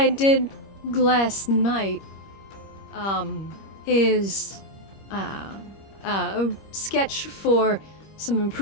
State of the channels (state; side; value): late; right; 25 ms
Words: did last night is a sketch for some